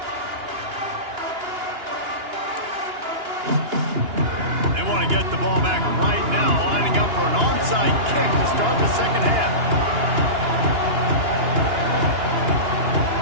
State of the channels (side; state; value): left; late; 2.9 ms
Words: They want to get the ball back right now, lining up for an onside kick to start the 2nd half.